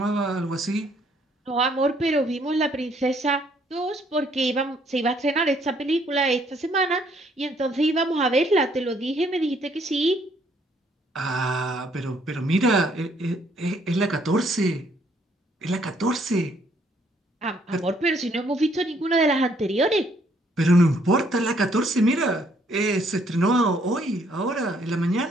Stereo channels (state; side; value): normal; both; correlation 0.67